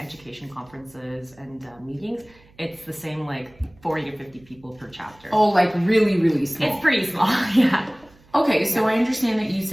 conferences and meetings, it's the same like 40 to 50 people per chapter. Oh, like really, really small. It's pretty small, yeah. Okay, so I understand that you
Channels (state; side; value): noise; right; hum, 28 dB below the sound